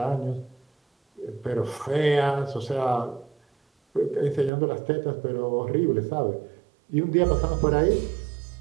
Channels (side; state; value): left; drops out; at 4.5 s